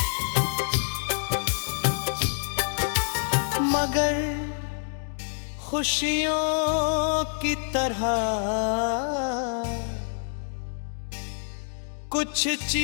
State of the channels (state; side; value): silent; right; digital silence